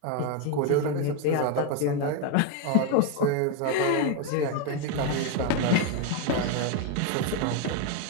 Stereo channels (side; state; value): both; different; correlation 0.01